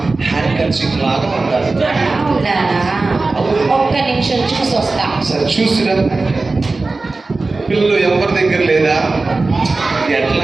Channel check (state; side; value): quieter; left; 3.5 dB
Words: హ్యాండ్ కర్చీఫ్ లాగా ఉండాలి. ఒక్క నిమిషం చూసి వస్తా. సరే చూసిరా. పిల్లలు ఎవరి దగ్గర లేదా?